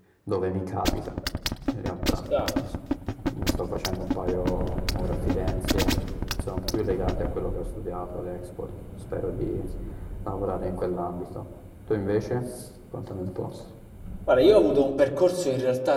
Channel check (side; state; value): both; identical; correlation 1.00